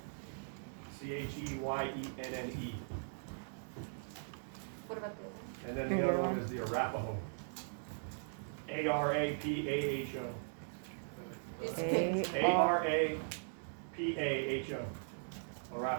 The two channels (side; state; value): left; silent; digital silence